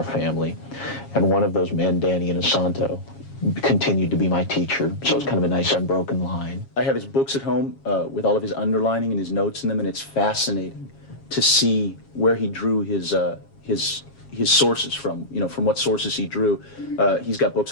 family. And one of those men, Danny Inosanto, continued to be my teacher, so it's kind of a nice unbroken line. I have his books at home with all of his underlining and his notes in them, and it's fascinating to see where he drew his sources from, from what sources he drew. He's got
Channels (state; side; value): late; right; 7.3 ms